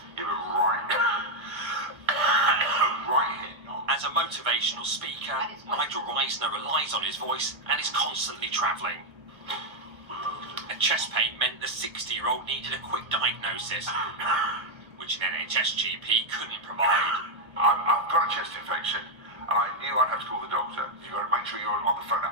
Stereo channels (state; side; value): late; left; 1.2 ms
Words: You were right. Right here. As a motivational speaker, Nigel Reisner relies on his voice and is constantly travelling. A chest pain meant the 60-year-old needed a quick diagnosis, which an NHS GP couldn't provide. I've got a chest infection, and I knew I'd have to call the doctor. You've got to make sure you're on the phone at